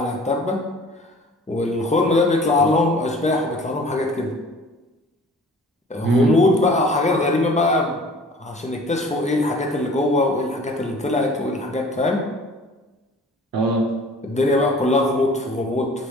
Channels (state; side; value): normal; both; correlation 0.48